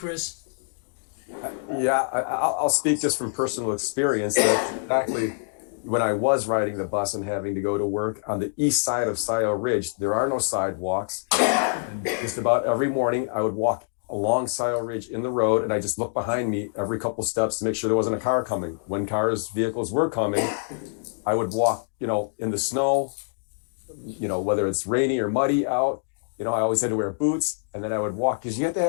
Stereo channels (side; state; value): right; silent; digital silence